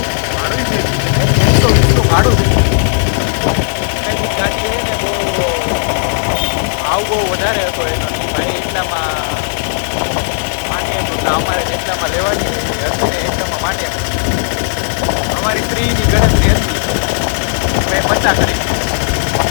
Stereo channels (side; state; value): right; silent; digital silence